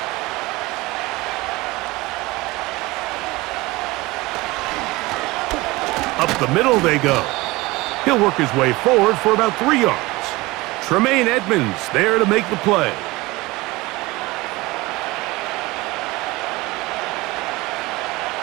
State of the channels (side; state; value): left; quieter; 21.4 dB